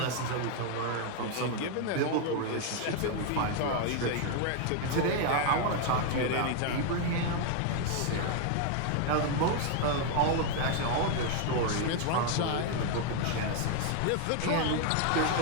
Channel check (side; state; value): both; different; correlation 0.01